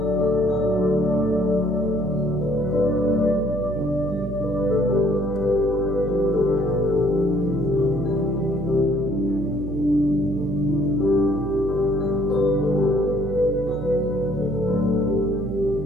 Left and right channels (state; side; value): noise; right; hum, 8 dB below the sound